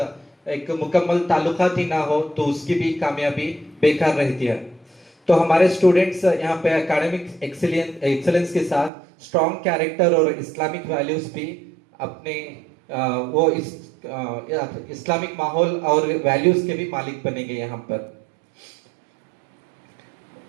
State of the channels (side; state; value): left; drops out; at 8.9 s